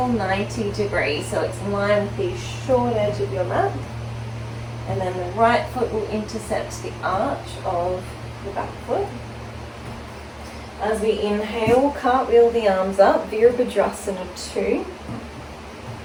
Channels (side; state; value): both; identical; correlation 1.00